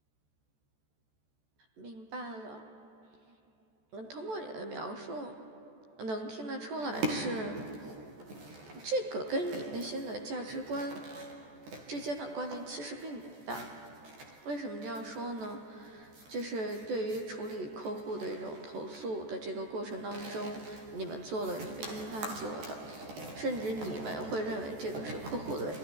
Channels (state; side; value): late; left; 14 ms